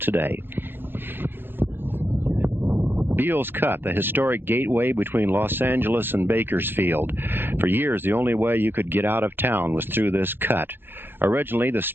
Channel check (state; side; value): late; left; 0.099 ms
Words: Beale's Cut, the historic gateway between Los Angeles and Bakersfield. For years, the only way you could get out of town was through this cut. Originally, the